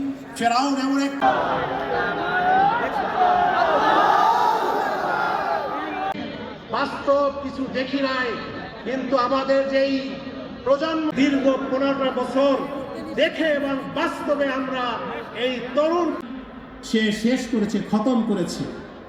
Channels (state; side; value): identical; both; correlation 1.00